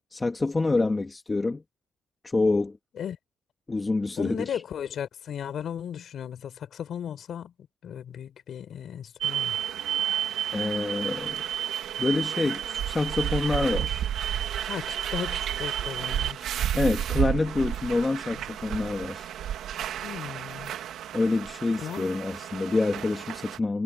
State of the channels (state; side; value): normal; both; correlation 0.82